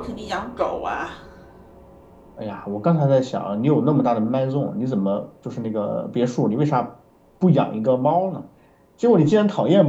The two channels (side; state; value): both; identical; correlation 1.00